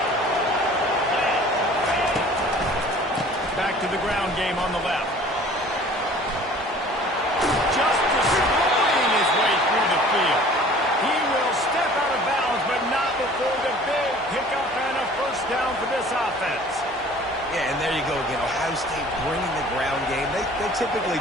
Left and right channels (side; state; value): both; normal; correlation 0.48